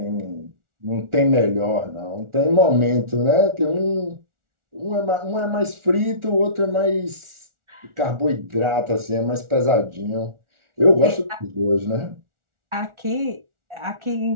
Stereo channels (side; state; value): left; late; 1.4 ms